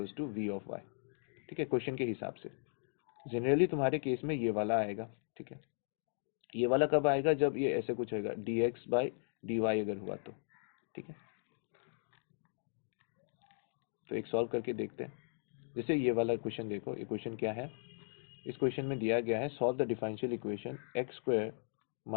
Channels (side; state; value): right; silent; digital silence